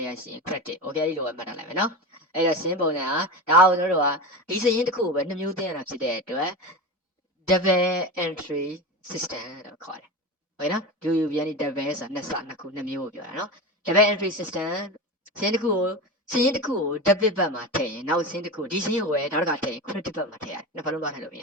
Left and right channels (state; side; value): normal; both; correlation 0.25